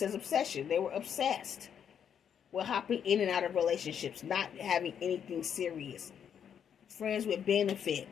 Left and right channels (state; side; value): quieter; right; 8.3 dB